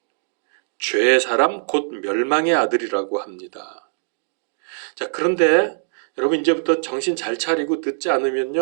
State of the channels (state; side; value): silent; left; digital silence